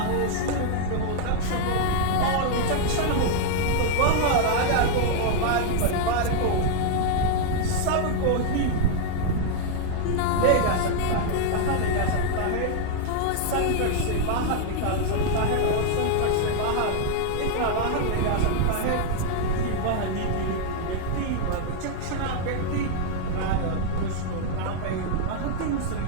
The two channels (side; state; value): both; different; correlation 0.00